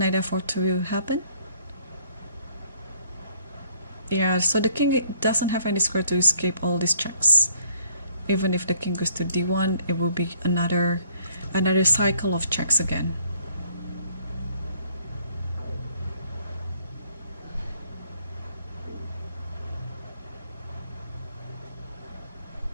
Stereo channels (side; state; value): both; inverted; correlation -0.62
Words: f4 to happen. Yeah, so the king doesn't have any square to escape all these checks. Even if the king goes to d1, it will be another cycle of checks again.